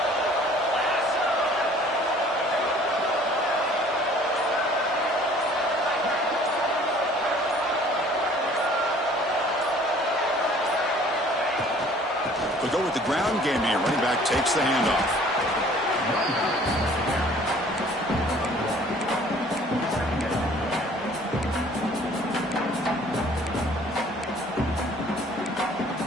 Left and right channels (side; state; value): both; normal; correlation 0.53